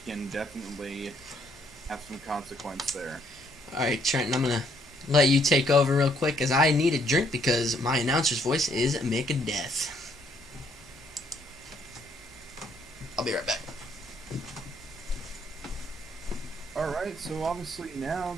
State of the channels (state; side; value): normal; both; correlation 0.68